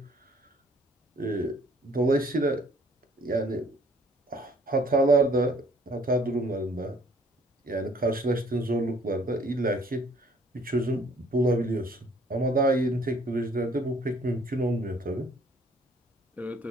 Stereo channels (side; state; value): both; normal; correlation 0.59